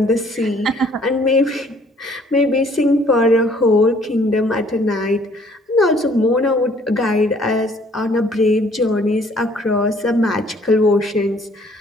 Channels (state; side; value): normal; both; correlation 0.59